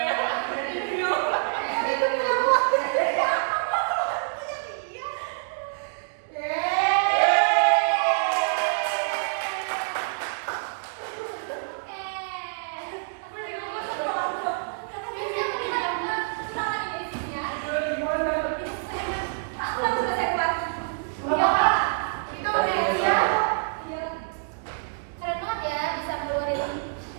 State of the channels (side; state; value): left; silent; digital silence